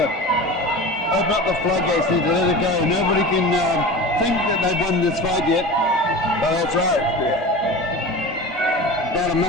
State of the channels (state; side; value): normal; both; correlation 0.32